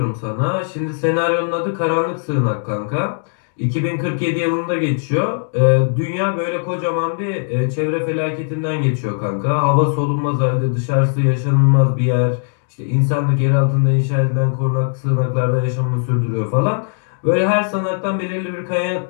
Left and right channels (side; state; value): right; silent; digital silence